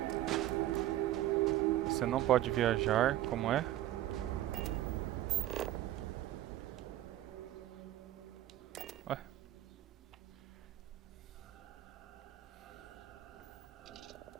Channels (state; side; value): quieter; left; 13.8 dB